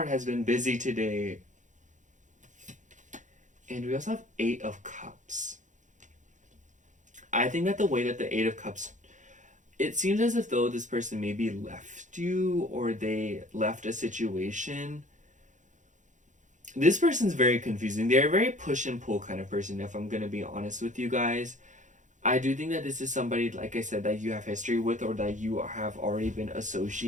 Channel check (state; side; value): late; left; 0.36 ms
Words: has been busy today. And we also have Eight of Cups. I think that the way that the Eight of Cups, it seems as if though this person maybe left you, or they left a situation. This person's very confusing. They're a very push and pull kind of person, if I'm going to be honest with you guys. I do think that this is somebody, like I said, that you have history with, or that you have already been